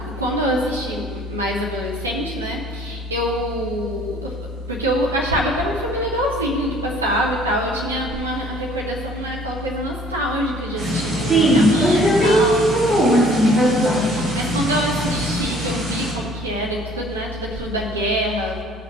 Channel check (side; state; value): both; normal; correlation 0.54